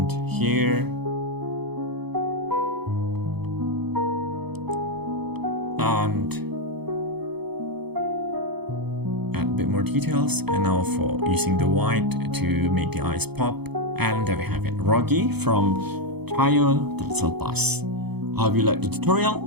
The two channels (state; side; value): late; left; 0.98 ms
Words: here, and add a bit more details, and now for using the white to make the eyes pop. And there we have it, Rogi from Tayo the Little Bus. I hope you liked the